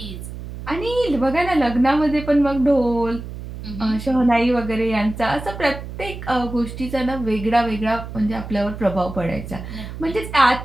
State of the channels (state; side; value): noise; right; hum, 10 dB below the sound